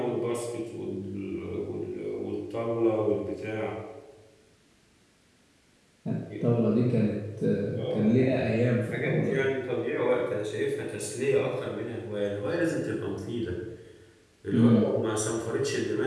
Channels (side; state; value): both; identical; correlation 1.00